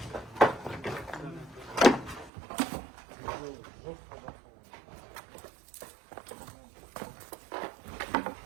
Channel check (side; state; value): left; drops out; at 2.3 s